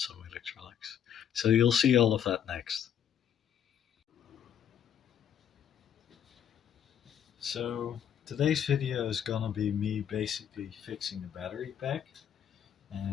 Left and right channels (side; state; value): right; quieter; 9.1 dB